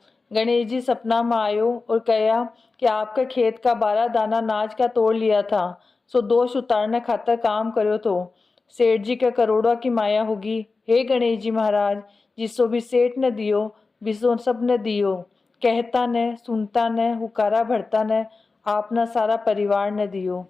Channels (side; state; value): right; quieter; 4.0 dB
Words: गणेश जी सपना में आयो और कहा कि आपके खेत का 12 दाना नाज का तोड़ लिया था, सो दोष उतारने खातर काम करो तो सेठ जी के करोड़ों की माया होगी। हे गणेश जी महाराज, जिसो भी सेठ ने दियो बिसो सब ने दियो। कहता ने, सुनता ने, हुकारा भरता ने, आपना सारा परिवार ने दियो।